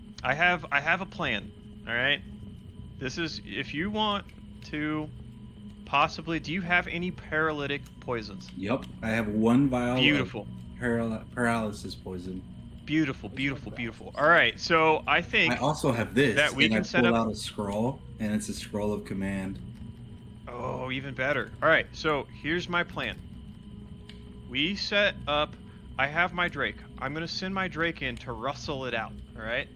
I have a plan. All right. This is if you want to possibly. Do you have any paralytic poisons? Yep, I have 1 vial. Beautiful. Of paralysis poison. Beautiful, beautiful, beautiful. All right, so I think I also have this. that we and can I set pulled up. out a scroll, and it's a scroll of command. Oh, even better. All right, so here's my plan. We set up. I have my Drake. I'm gonna send my Drake in to rustle it out. All right.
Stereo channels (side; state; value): both; identical; correlation 1.00